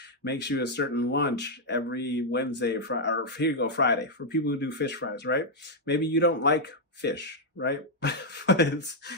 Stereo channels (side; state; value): both; normal; correlation -0.03